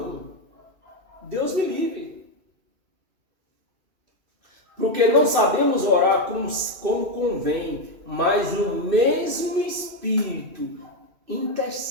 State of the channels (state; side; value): late; left; 2.6 ms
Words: Deus me livre. Porque não sabemos orar como convém, mas o mesmo Espírito